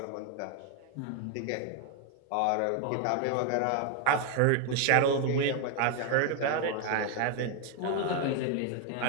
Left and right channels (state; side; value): different; both; correlation 0.01